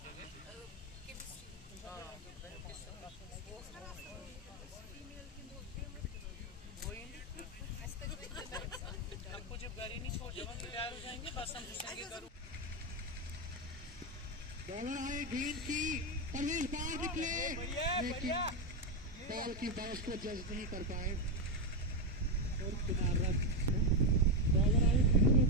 हमको जब गाड़ी नहीं छोड़ जब हम तैयार हो जाएंगे बस हम पूछेंगे करूँ बॉलर आए गेंद की परवेज बाहर निकले लेकिन बॉल की बाउंस को जज नहीं कर पाए और किनारा बॉलर आए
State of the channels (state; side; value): normal; both; correlation 0.07